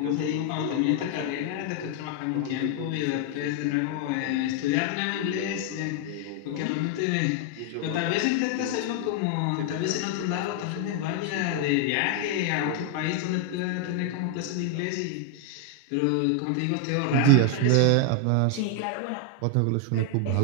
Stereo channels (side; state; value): both; different; correlation 0.00